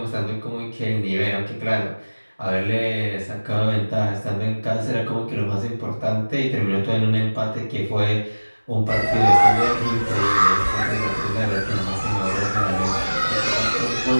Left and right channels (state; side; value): inverted; both; correlation -1.00